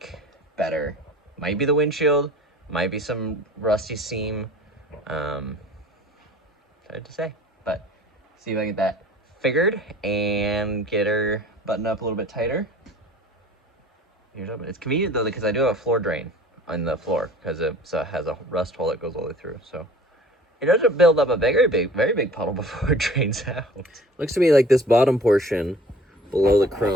better. Might be the windshield, might be some rusty seam. Hard to say, but see if I can get that figured and get her buttoned up a little bit tighter. Here's open. It's convenient though because I do have a floor drain on the floor because it has a rust hole that goes all the way through. So it doesn't build up a very big puddle before it drains out. Looks to me like this bottom portion below the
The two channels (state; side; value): normal; both; correlation 0.46